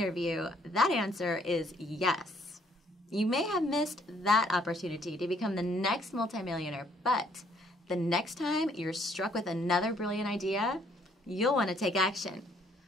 that answer is yes. You may have missed that opportunity to become the next multimillionaire, but the next time you're struck with another brilliant idea, you'll want to take action.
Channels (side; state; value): both; normal; correlation 0.65